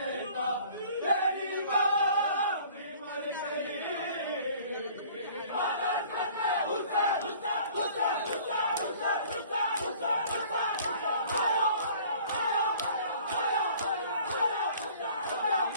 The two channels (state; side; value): inverted; both; correlation -0.51